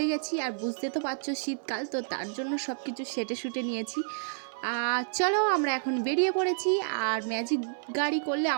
গেছি। আর বুঝতে তো পারছো শীতকাল, তো তার জন্য সব কিছু সেটে নিয়েছি। চলো আমরা এখন বেরিয়ে পড়েছি। আর ম্যাজিক গাড়ি করলে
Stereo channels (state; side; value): silent; left; 58 dB below the other